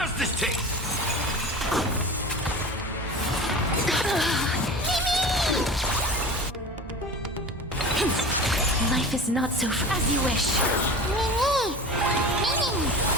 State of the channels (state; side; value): normal; both; correlation 0.33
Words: this taste? Life is not so as you wish. Mimi! Mimi!